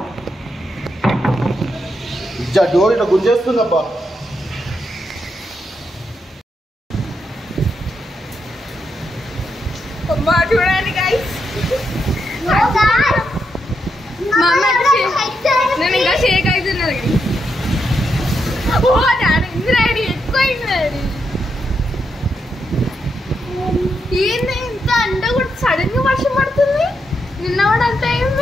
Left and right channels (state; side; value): normal; both; correlation 0.82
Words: డోర్ ఇట్లా గుంజేస్తుందబ్బా. చూడండి గైస్, నేను ఇంకా షేక్ అవుతున్నది. ఇంద్రాడి ఎక్కువైంది. ఏంది ఇంత అండ కూడా సడన్ గా వర్షం పడుతుంది. నిన్న కూడా అంత